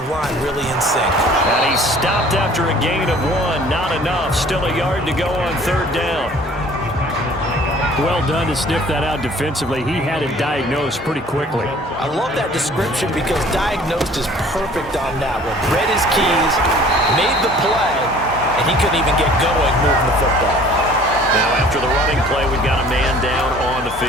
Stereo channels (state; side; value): normal; both; correlation 0.51